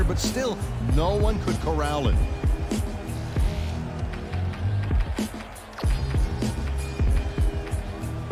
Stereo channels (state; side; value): identical; both; correlation 1.00